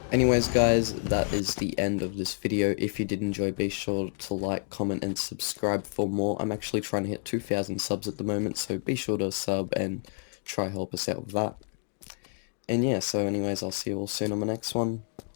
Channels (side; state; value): right; silent; digital silence